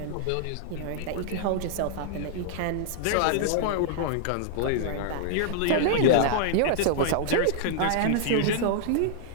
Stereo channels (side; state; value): both; different; correlation 0.00